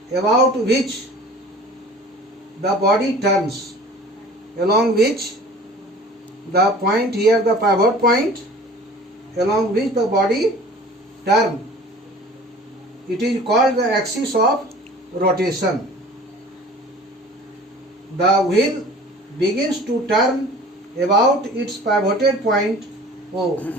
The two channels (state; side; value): normal; both; correlation 0.45